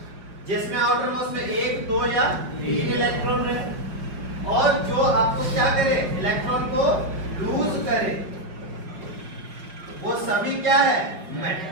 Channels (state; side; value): late; left; 5.4 ms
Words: जिसमें आउटर मोस्ट में 1, 2 या 3 इलेक्ट्रॉन रहे, और जो आपको क्या करे? इलेक्ट्रॉन को लूज करे, वो सभी क्या है?